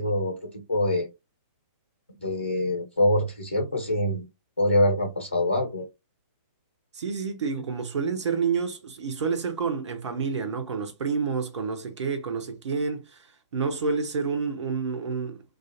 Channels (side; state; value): both; inverted; correlation -0.62